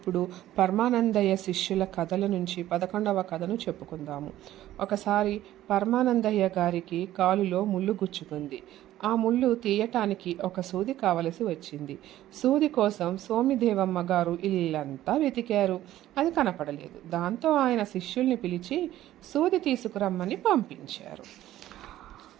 పరమానందయ్య శిష్యుల కథల నుంచి 11వ కథను చెప్పుకుందాము. ఒకసారి పరమానందయ్య గారికి కాలులో ముళ్ళు గుచ్చుకుంది. ఆ ముళ్ళు తీయటానికి ఒక సూది కావలసి వచ్చింది. సూది కోసం సోమిదేవమ్మ గారు ఇల్లంతా వెతికారు. అది కనపడలేదు. దాంతో ఆయన శిష్యుల్ని పిలిచి సూది తీసుకురమ్మని పంపించారు.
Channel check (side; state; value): left; quieter; 13.8 dB